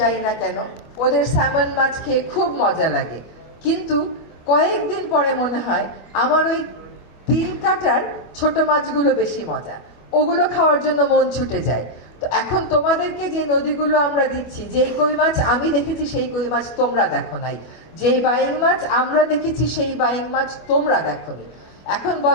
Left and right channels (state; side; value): late; right; 25 ms